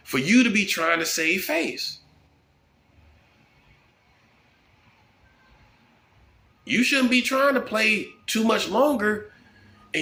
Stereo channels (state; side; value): identical; both; correlation 1.00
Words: for you to be trying to save face. You shouldn't be trying to play too much longer,